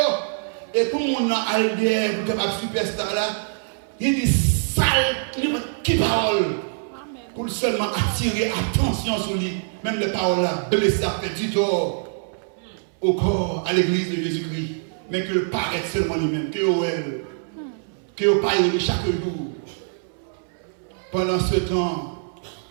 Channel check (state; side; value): silent; left; 63 dB below the other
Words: Et tout le monde a allié pour capable superstar là. Il dit sale, qui parole. Pour seulement attirer attention sur lui. Même les paroles là, blessées, fait du tort au corps, à l'église de Jésus-Christ. Mais que le paraît seulement lui-même, que elle, que le paye chaque jour. Pendant ce temps,